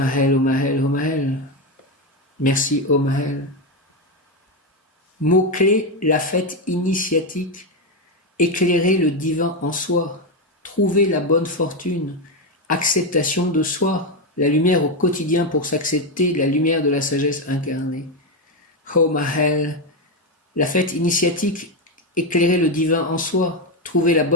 ô Maël, ô Maël. Merci, ô Maël. Mot-clé, la fête initiatique. Éclairer le divin en soi. Trouver la bonne fortune. Acceptation de soi. La lumière au quotidien pour s'accepter, la lumière de la sagesse incarnée. Oh Maël, la fête initiatique, éclairer le divin en soi, trouver la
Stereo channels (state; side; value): normal; both; correlation 0.09